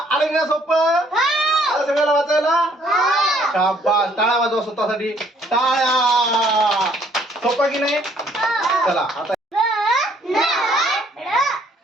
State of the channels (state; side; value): normal; both; correlation 0.64